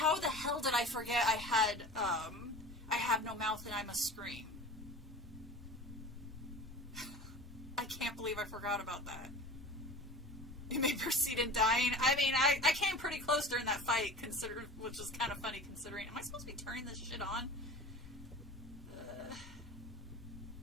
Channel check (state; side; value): normal; both; correlation 0.37